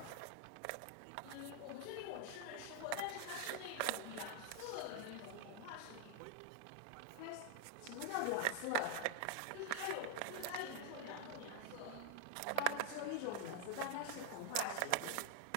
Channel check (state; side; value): different; both; correlation 0.00